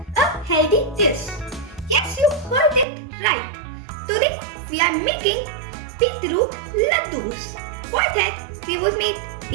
a healthy dish. Yes, you heard it right. Today we are making beetroot laddus. For that we will need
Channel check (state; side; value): drops out; left; at 2.9 s